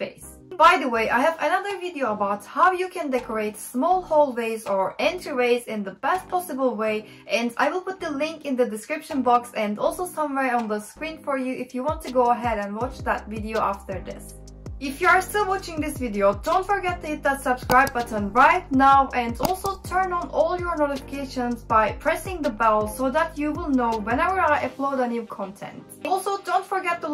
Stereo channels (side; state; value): both; identical; correlation 1.00